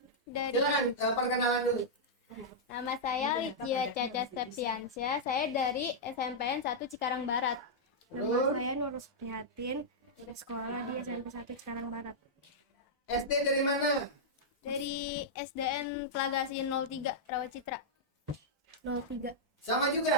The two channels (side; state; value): both; normal; correlation -0.08